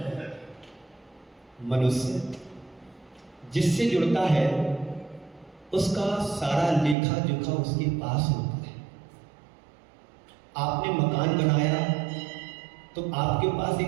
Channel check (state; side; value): drops out; left; at 7.0 s